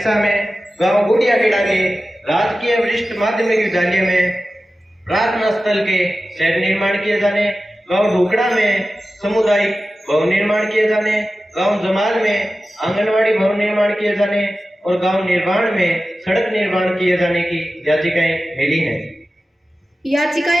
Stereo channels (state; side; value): normal; both; correlation 0.94